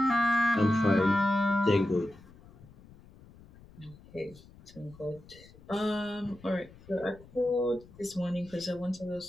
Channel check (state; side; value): noise; left; rumble, 22 dB below the sound